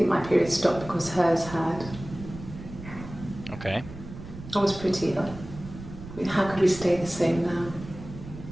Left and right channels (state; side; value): noise; right; rumble, 13 dB below the sound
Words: my period stopped because hers had. Okej. I was pretty ill. I mean, how could we stay the same now?